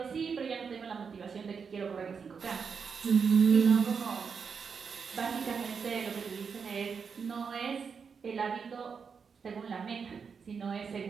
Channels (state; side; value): quieter; left; 5.9 dB